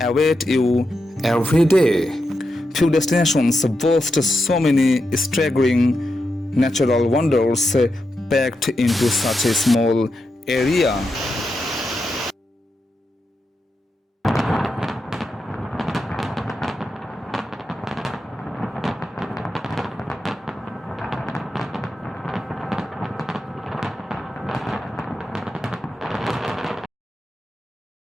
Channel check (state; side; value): normal; both; correlation 0.87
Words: you every day. Few destinations boast so many staggering natural wonders packed into such a small area.